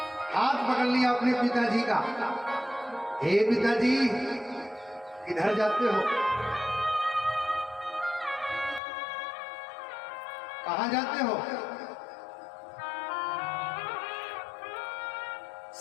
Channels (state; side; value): drops out; right; at 8.8 s